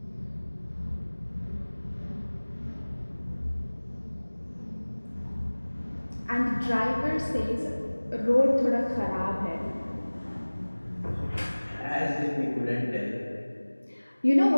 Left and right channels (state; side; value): inverted; both; correlation -1.00